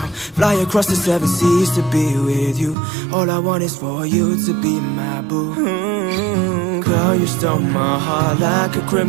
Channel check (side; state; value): left; drops out; at 2.8 s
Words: Fly across the 7 seas to be with you. All I want is for you to be my boo. Girl, you stole my heart like a